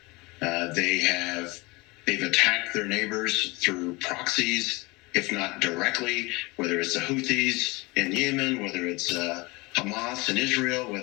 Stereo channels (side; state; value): right; quieter; 24.4 dB